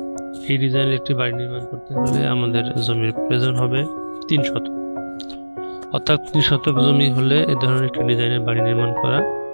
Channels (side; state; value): both; inverted; correlation -1.00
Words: এই ডিজাইনের একটি বাড়ি নির্মাণ করতে হলে আমাদের জমির প্রয়োজন হবে 3 শতক, অর্থাৎ 3 শতক জমি হলে এই ধরনের একটি ডিজাইনের বাড়ি নির্মাণ করা